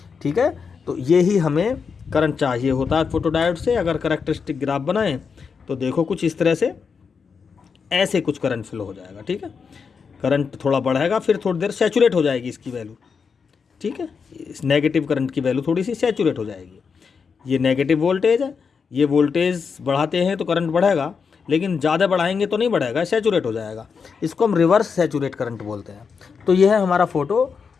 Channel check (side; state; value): right; quieter; 5.7 dB